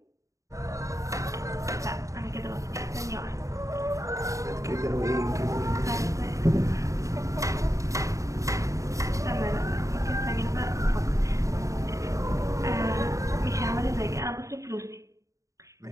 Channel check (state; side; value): late; left; 0.16 ms